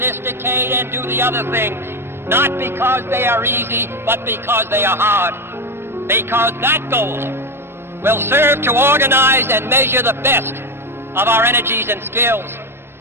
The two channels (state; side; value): late; left; 0.12 ms